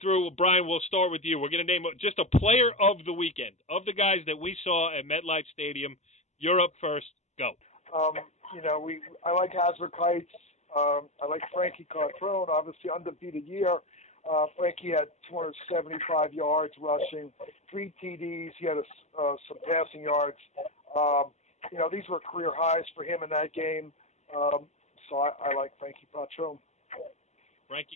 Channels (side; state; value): right; late; 0.33 ms